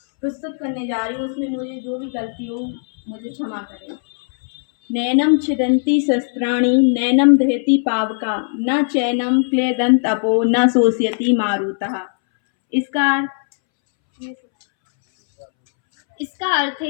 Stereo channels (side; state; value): right; silent; 67 dB below the other